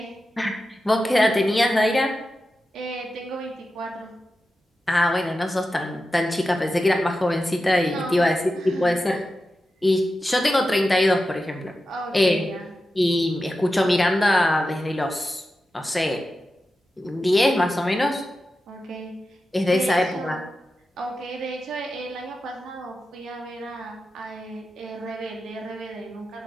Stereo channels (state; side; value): normal; both; correlation 0.91